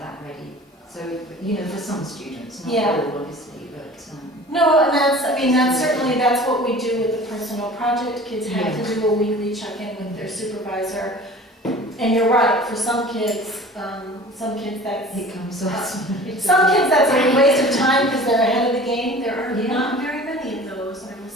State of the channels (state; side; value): normal; both; correlation 0.43